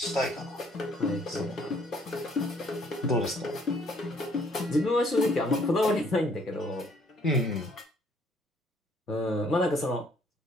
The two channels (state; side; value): normal; both; correlation 0.63